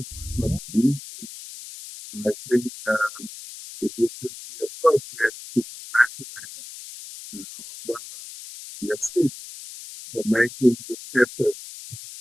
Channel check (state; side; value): noise; left; hiss, 14 dB below the sound